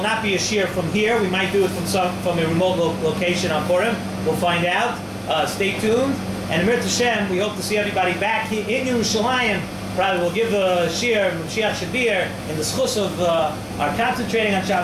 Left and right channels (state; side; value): identical; both; correlation 1.00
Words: not be a shiur from here. We might do it from a remote location on Purim. We'll find out. Stay tuned. And Emir Hashem, we hope to see everybody back here in Yerushalayim. Probably we'll give a shiur, Mashiach Shabir, in the schus of our concentrating on